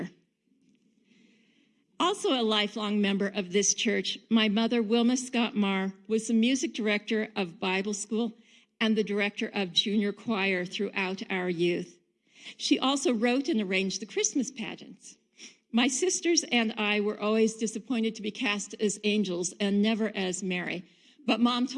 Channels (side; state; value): both; identical; correlation 1.00